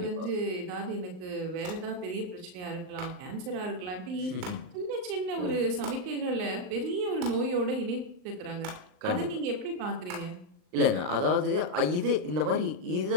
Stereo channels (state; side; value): late; left; 39 ms